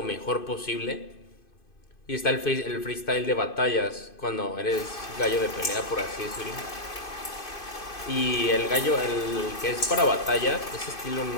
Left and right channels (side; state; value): right; late; 2.5 ms